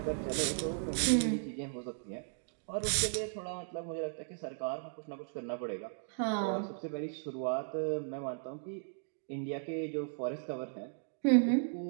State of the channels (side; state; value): left; silent; digital silence